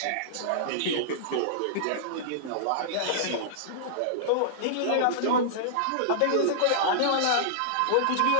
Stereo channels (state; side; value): different; both; correlation -0.02